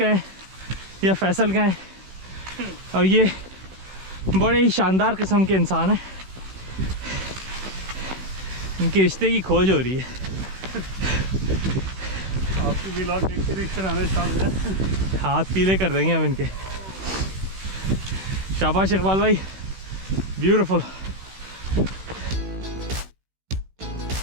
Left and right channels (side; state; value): left; late; 16 ms